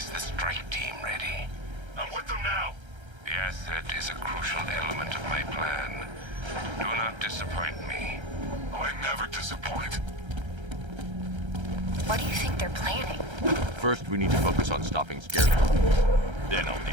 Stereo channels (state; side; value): late; left; 1.3 ms